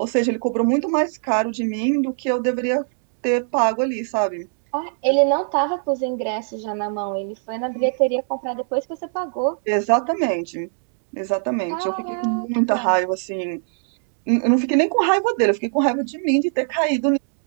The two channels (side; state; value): left; silent; digital silence